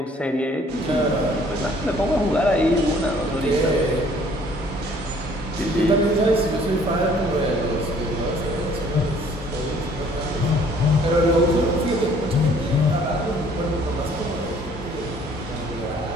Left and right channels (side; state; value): both; normal; correlation 0.58